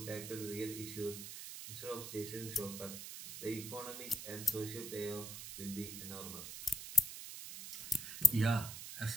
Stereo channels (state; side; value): noise; right; hiss, 8 dB below the sound